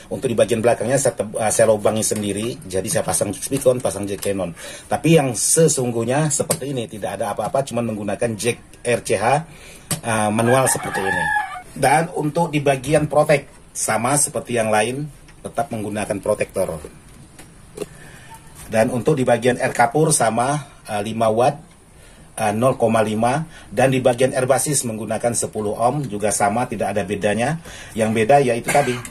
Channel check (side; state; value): both; identical; correlation 1.00